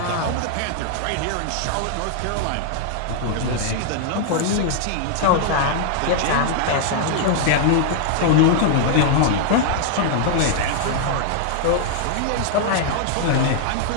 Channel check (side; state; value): both; different; correlation -0.01